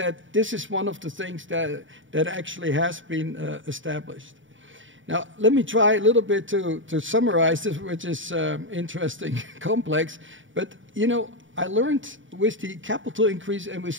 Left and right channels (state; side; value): late; left; 0.56 ms